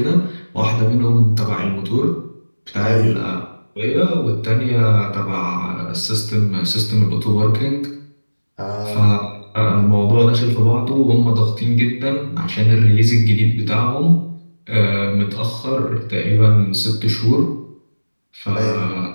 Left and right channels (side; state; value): both; inverted; correlation -1.00